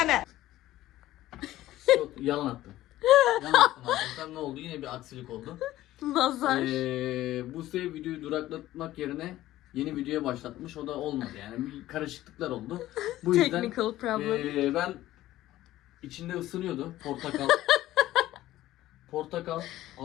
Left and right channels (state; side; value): quieter; right; 15.1 dB